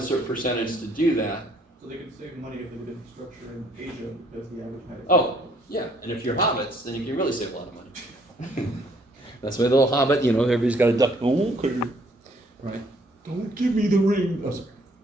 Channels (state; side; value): normal; both; correlation 0.64